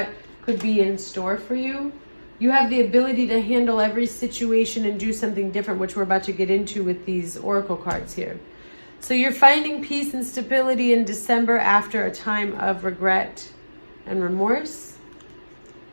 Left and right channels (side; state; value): both; inverted; correlation -1.00